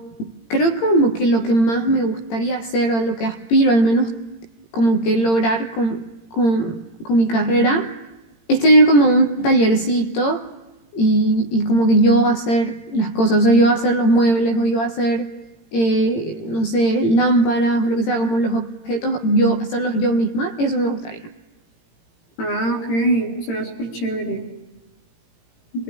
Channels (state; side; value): late; right; 18 ms